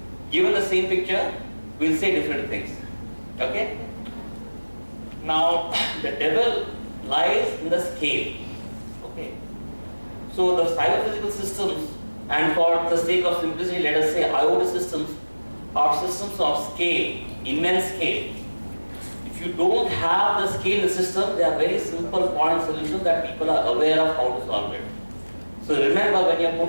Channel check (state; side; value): inverted; both; correlation -1.00